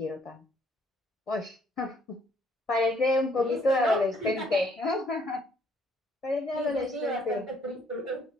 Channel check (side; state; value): both; normal; correlation 0.65